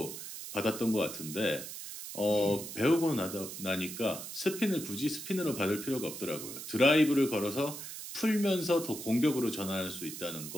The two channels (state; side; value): noise; right; hiss, 9 dB below the sound